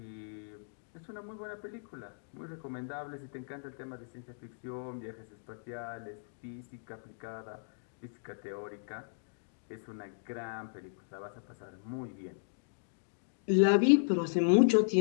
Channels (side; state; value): right; silent; digital silence